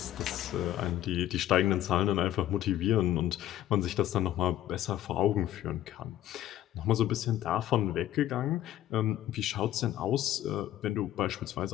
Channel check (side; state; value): right; quieter; 12.9 dB